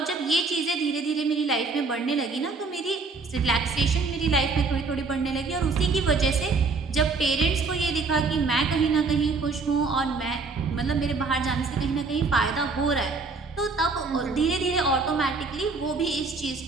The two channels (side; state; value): left; quieter; 4.1 dB